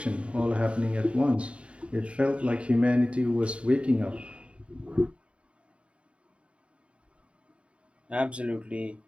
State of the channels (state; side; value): late; left; 0.060 ms